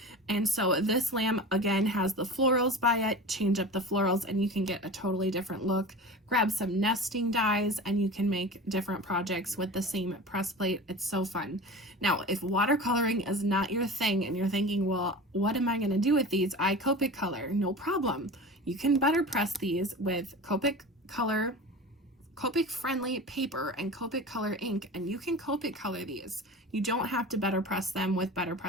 And so this lamb, again, has the florals by it. Change up the florals and you can get a totally different look. Grab some nesting dies and you can make different projects with the same press plate. It's so fun. Now, if watercoloring is not your thing and you're thinking, well, what am I going to do with these? I Copic color. No problem. You can BetterPress these with Copic color, Copic friendly paper, and Copic color ink, and you can Copic color these. You don't have to BetterPress them with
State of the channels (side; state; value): both; normal; correlation 0.33